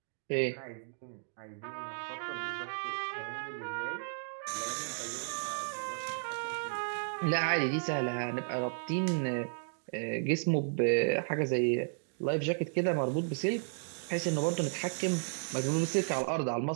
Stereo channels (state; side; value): silent; left; digital silence